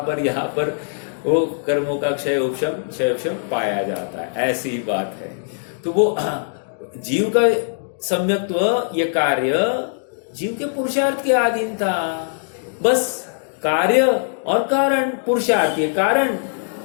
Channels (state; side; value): silent; right; digital silence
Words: यहाँ पर वो कर्मों का क्षय उपशम पाया जाता है, ऐसी ही बात है। तो वो जीव का सम्यक्त्व, ये कार्य जीव के पुरुषार्थ के अधीन था। बस कार्य और कारण, पुरुषार्थ ये कारण